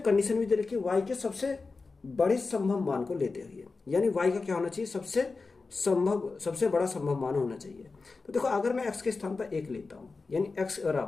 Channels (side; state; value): right; quieter; 4.1 dB